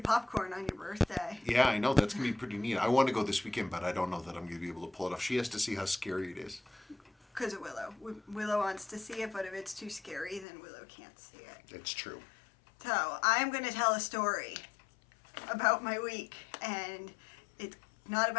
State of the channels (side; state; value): right; drops out; at 10.5 s